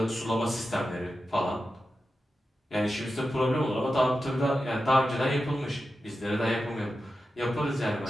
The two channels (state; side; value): normal; both; correlation 0.91